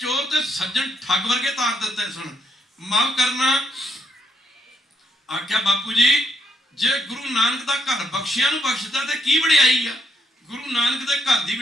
ਤੇ ਸੱਜਣ ਠੱਗ ਵਰਗੇ ਤਾਰ ਦਿੱਤੇ ਸਨ। ਮਾਫ ਕਰਨਾ। ਆਖਿਆ ਬਾਪੂ ਜੀ ਜੇ ਗੁਰੂ ਨਾਨਕ ਦਾ ਘਰ ਬਖਸ਼ਿਆਂ ਨੂੰ ਬਖਸ਼ਦਾ ਤੇ ਕੀ ਵਡਿਆਈ ਆ? ਗੁਰੂ ਨਾਨਕ ਦੇ ਘਰ ਦੀ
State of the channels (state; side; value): normal; both; correlation 0.75